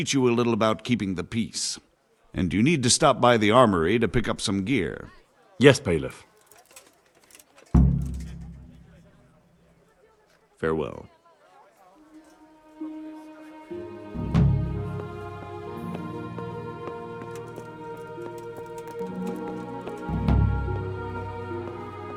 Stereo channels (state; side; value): identical; both; correlation 1.00